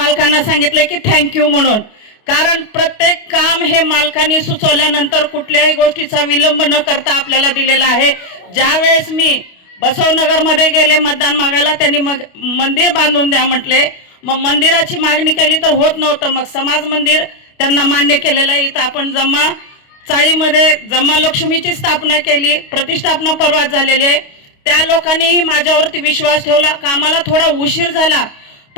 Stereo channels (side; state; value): right; late; 29 ms